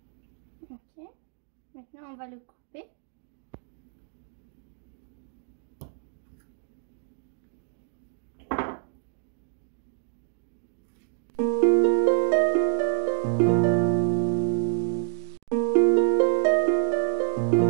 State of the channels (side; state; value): left; silent; digital silence